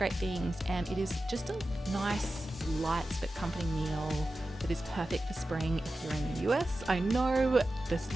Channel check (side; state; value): both; normal; correlation 0.93